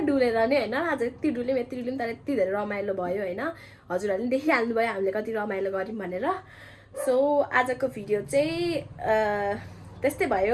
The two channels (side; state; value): both; identical; correlation 1.00